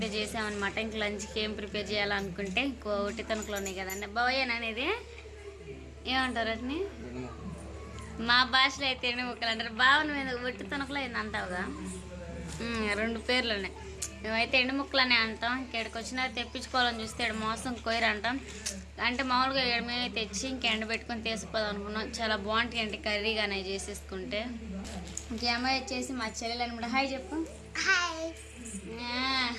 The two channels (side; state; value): both; identical; correlation 1.00